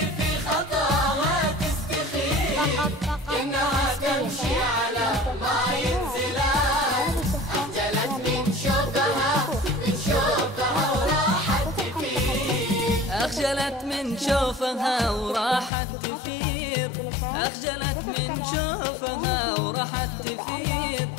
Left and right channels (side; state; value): right; drops out; at 15.7 s